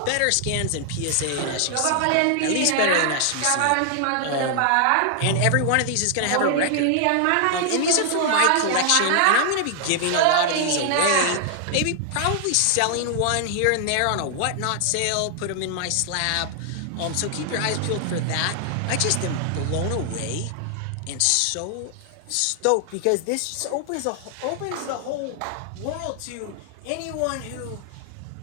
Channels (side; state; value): both; different; correlation 0.00